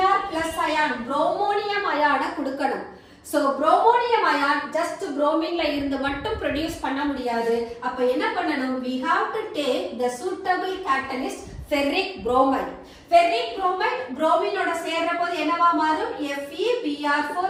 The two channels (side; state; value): both; identical; correlation 1.00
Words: plus ion bromonium ion கொடுக்கணும். So bromonium ion just bromine ல இருந்து மட்டும் produce பண்ண முடியாது. அப்ப என்ன பண்ணணும், we have to take the suitable catalyst ferric bromide. ferric bromide bromine ஓட சேர்ற போது என்னவா மாறும், FeBr4